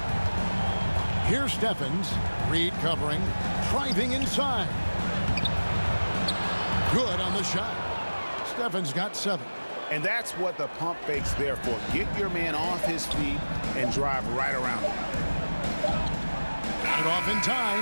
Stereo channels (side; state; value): both; inverted; correlation -1.00